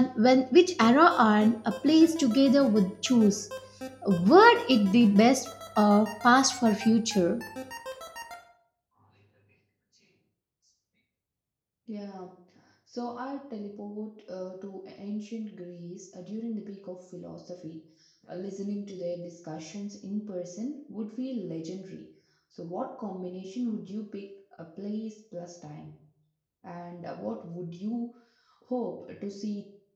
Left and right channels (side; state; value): both; identical; correlation 1.00